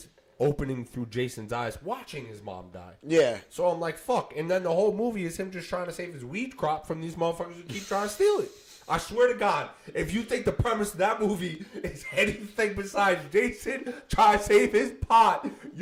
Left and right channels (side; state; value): both; identical; correlation 1.00